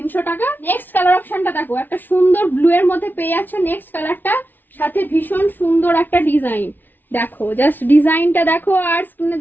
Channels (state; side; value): late; right; 0.090 ms